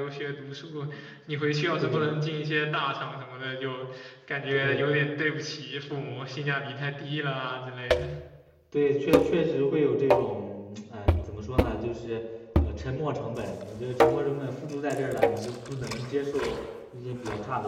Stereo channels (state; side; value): identical; both; correlation 1.00